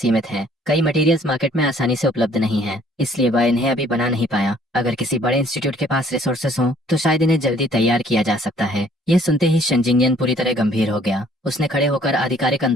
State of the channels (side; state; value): both; normal; correlation 0.59